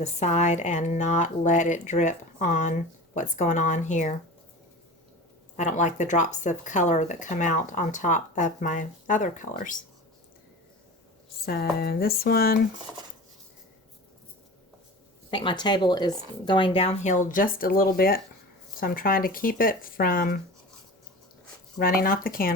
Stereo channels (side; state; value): both; normal; correlation 0.34